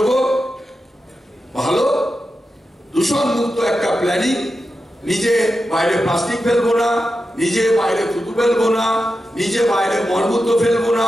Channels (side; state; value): both; normal; correlation 0.90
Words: ভালো দূষণ মুক্ত একটা প্ল্যানিং, নিজে বাইরে প্লাস্টিক ফেলবো না, নিজে বাইরে থুতু ফেলবো না, নিজে বাইরে মলমূত্র ফেলবো না,